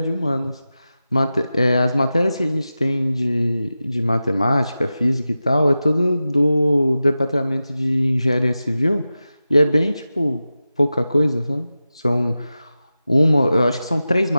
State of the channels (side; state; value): both; inverted; correlation -0.94